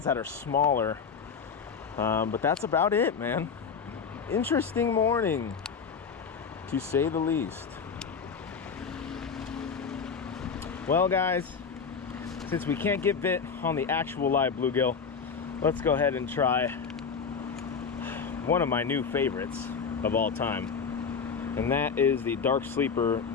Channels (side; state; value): right; quieter; 5.9 dB